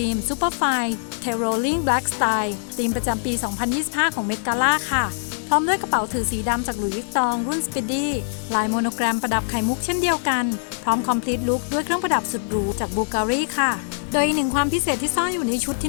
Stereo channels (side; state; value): right; silent; digital silence